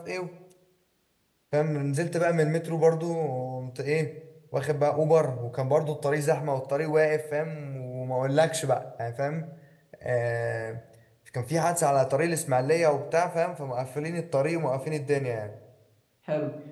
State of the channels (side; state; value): both; identical; correlation 1.00